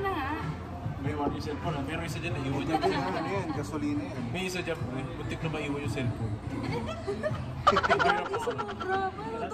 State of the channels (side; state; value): both; identical; correlation 1.00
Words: na nga. May yung cellphone, pero isa dyan naiwan dyan. Ano yan? Gasolina yan. May isa dyan, buntik na maiwan yung cellphone. Hindi sumobra. Paano